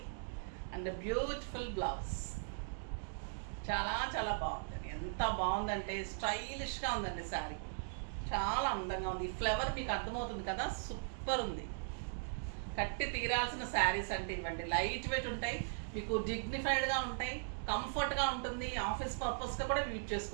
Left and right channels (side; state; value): left; silent; digital silence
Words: అండ్ బ్యూటిఫుల్ బ్లౌజ్. చాలా చాలా బాగుందండి. ఎంత బాగుందంటే స్టైలిష్గా ఉందండి శారీ. చాలా అందంగా ఉంది. ఈ ఫ్లవర్ మీకు అర్థమవుతుంది కదా, సూపర్ ఉంది. కట్టి తీరాల్సిన శారీస్ అంటే ఇవ్వండి. లైట్ వెయిట్ ఉంటాయి, మీకు డిగ్నిఫైడ్గా ఉంటాయి, కంఫర్ట్గా ఉంటుంది. ఆఫీస్ పర్పస్గా కూడా యూజ్